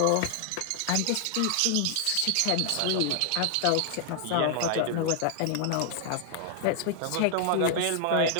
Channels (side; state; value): both; different; correlation 0.00